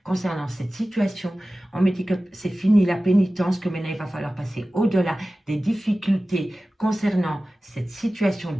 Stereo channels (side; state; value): both; normal; correlation 0.96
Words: concernant cette situation. On me dit que c'est fini la pénitence, que maintenant il va falloir passer au-delà des difficultés concernant cette situation